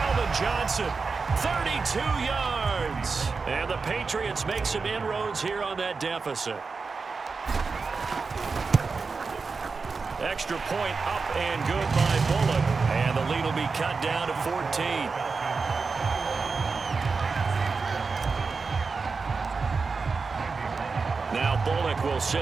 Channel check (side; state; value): left; quieter; 4.6 dB